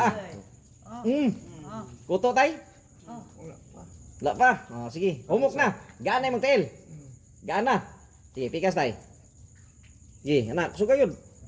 Kuto tay? Wala pa. Sige, humok na. Gaan na yung tail. Gaan na. Sige, pikas tay. Sige, anak, suga yun.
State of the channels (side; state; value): both; identical; correlation 1.00